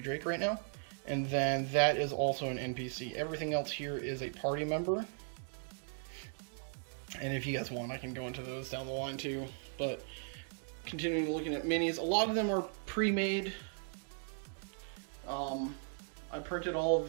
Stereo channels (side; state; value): left; silent; 53 dB below the other